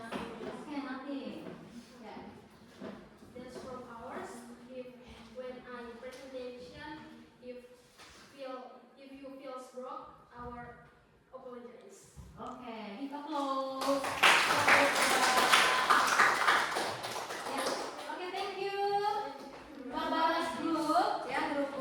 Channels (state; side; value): identical; both; correlation 1.00